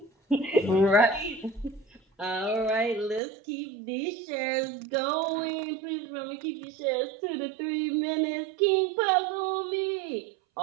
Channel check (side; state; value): left; drops out; at 3.2 s